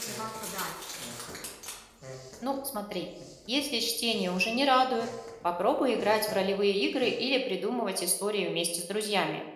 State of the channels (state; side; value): identical; both; correlation 1.00